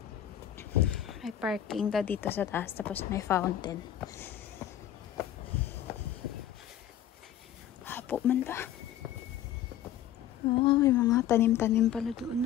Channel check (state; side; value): quieter; right; 10.9 dB